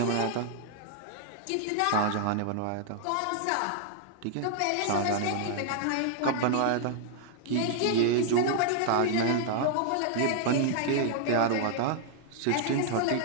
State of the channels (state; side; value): different; both; correlation -0.01